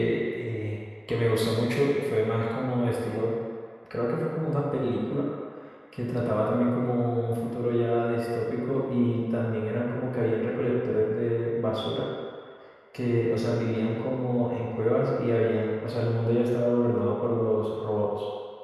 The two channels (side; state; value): both; identical; correlation 1.00